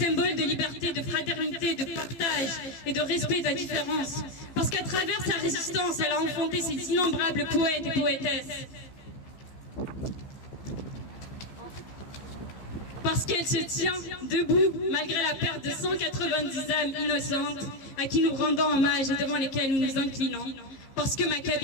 de liberté, de fraternité, de partage et de respect de la différence. Parce qu'à travers sa résistance, elle a enfanté ses innombrables poètes et poétesses. Parce qu'elle se tient debout malgré la perte de 190 âmes innocentes à qui nous rendons hommage et devant lesquelles nous nous inclinons. parce que ma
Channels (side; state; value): right; late; 15 ms